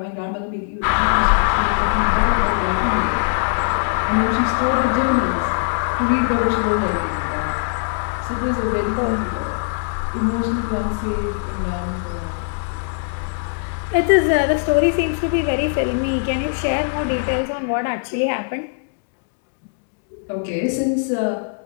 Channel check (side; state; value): right; silent; digital silence